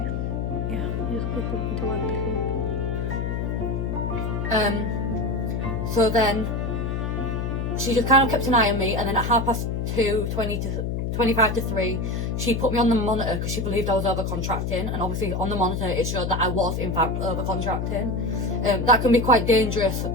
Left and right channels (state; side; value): noise; left; hum, 1 dB below the sound